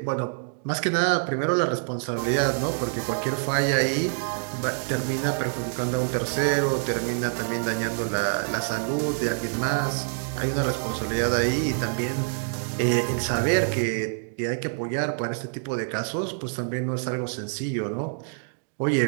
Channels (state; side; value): silent; left; digital silence